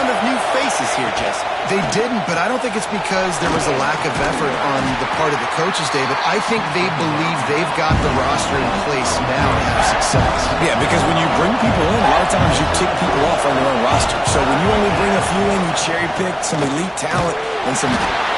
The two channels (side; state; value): both; identical; correlation 1.00